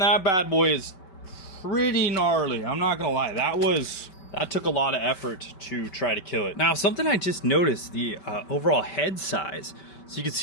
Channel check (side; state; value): right; late; 5.2 ms